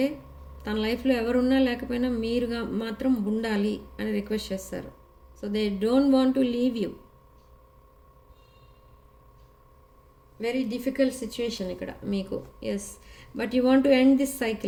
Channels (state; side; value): identical; both; correlation 1.00